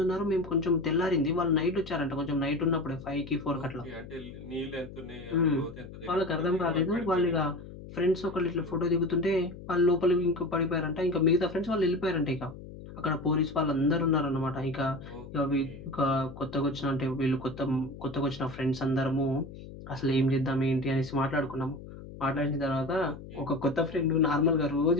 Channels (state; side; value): noise; left; hum, 14 dB below the sound